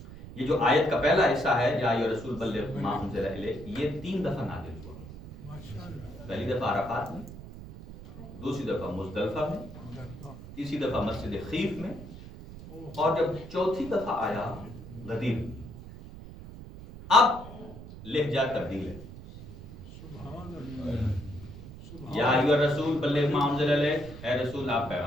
یہ جو آیت کا پہلا حصہ ہے یا ایھا رسول بلغ ما انزل الیک، یہ 3 دفعہ نازل ہوا. پہلی دفعہ عرفات میں، دوسری دفعہ مزدلفہ میں، تیسری دفعہ مسجد خیف میں، اور جب چوتھی دفعہ آیا غدیر. اب لہجہ تبدیل ہے. یا ایھا رسول بلغ ما انزل الیک، اے رسول آپ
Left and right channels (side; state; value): right; noise; rumble, 14 dB below the sound